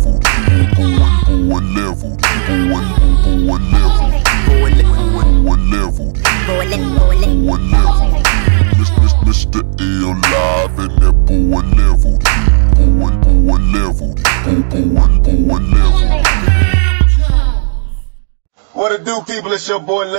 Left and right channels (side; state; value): left; silent; digital silence